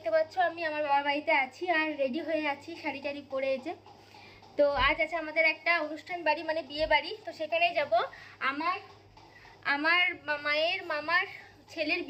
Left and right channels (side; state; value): both; identical; correlation 1.00